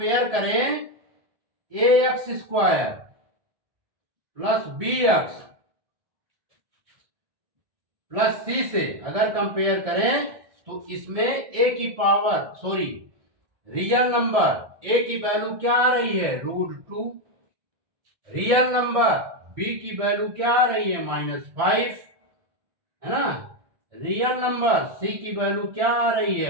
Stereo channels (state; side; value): late; left; 1.7 ms